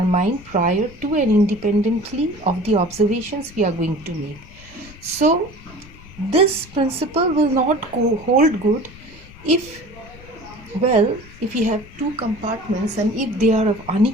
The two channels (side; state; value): left; noise; rumble, 20 dB below the sound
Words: mind prior to and independently of the observations we are going to make. So, this principle will not hold good if, well, if you have two compartments and if they are of